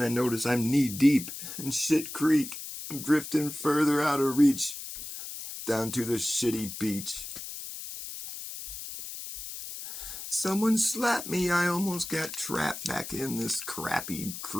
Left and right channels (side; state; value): left; noise; hiss, 9 dB below the sound